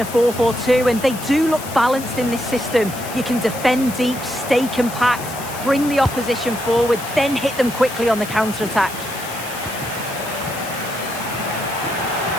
4-4-2, and they do look balanced in this system. You can defend deep, stay compact, bring the opposition forward, then hit them quickly on the counter-attack.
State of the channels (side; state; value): left; noise; hiss, 12 dB below the sound